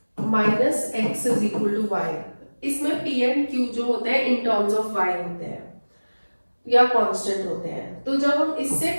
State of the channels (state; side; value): inverted; both; correlation -1.00